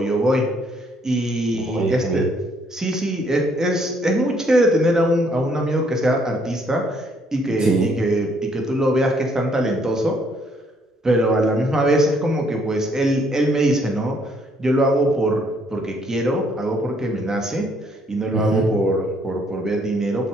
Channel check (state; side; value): normal; both; correlation 0.67